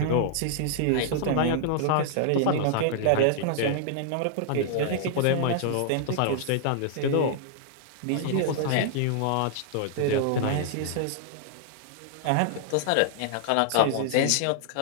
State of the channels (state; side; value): different; both; correlation -0.01